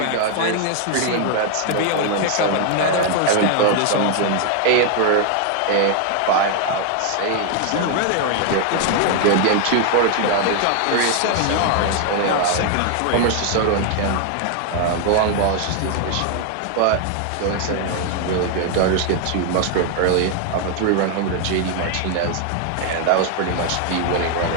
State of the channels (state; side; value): different; both; correlation 0.01